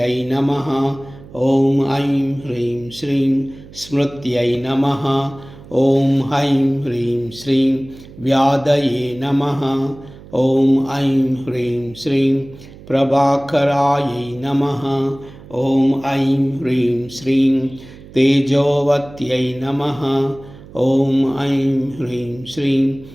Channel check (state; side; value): noise; right; hum, 19 dB below the sound